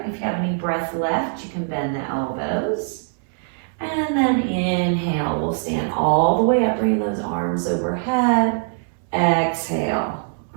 If you have any breath left, you can bend the elbows. And then inhale, we'll stand all the way up, bring those arms overhead. Exhale,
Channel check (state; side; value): silent; left; 64 dB below the other